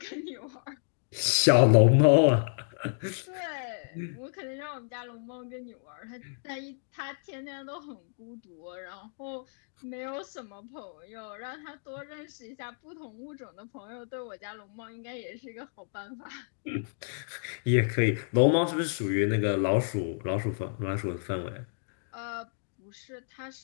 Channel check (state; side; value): silent; right; digital silence